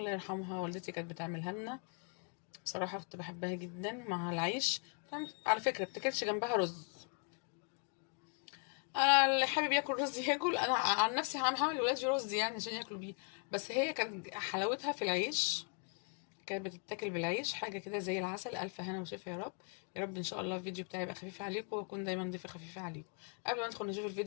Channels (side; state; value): right; quieter; 39.2 dB